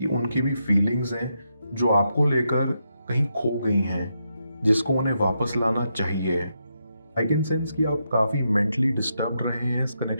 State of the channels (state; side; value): inverted; both; correlation -0.83